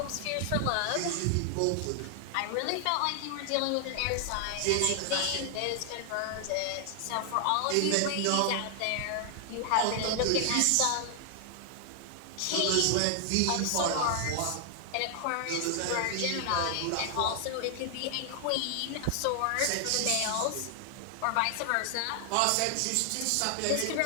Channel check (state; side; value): different; both; correlation 0.00